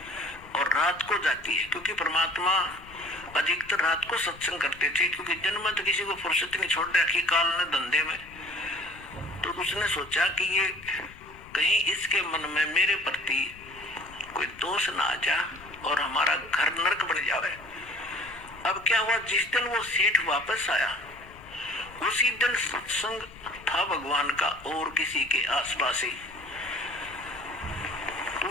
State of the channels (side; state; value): left; noise; rumble, 21 dB below the sound